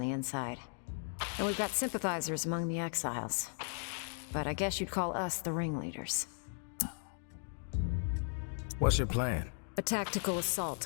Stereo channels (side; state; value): right; silent; 53 dB below the other